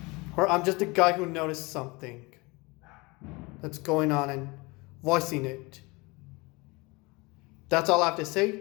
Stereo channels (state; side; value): quieter; right; 25.2 dB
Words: Or I'm just a guy who noticed something that's going on and voicing it. That's all I have to